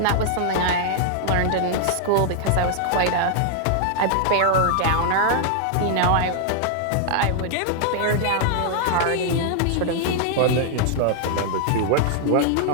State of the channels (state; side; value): different; both; correlation 0.00